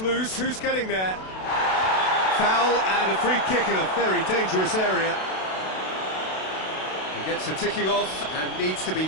who's getting there? Foul and a free kick in a very dangerous area. He gets a ticking off and needs to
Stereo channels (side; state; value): right; late; 32 ms